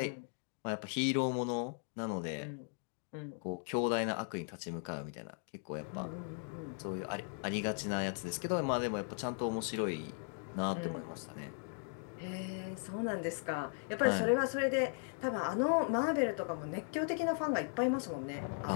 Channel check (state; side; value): silent; right; 53 dB below the other